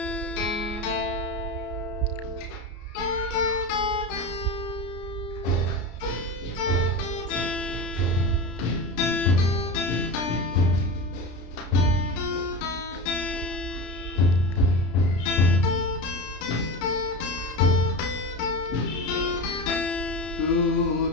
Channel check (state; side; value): late; right; 33 ms